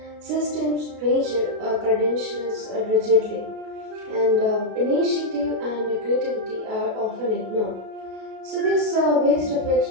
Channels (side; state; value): left; late; 37 ms